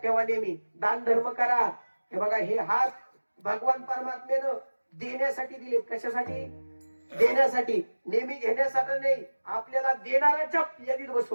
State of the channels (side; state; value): both; inverted; correlation -1.00